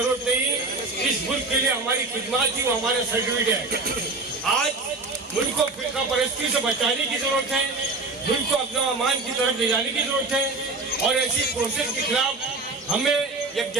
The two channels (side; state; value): left; quieter; 3.4 dB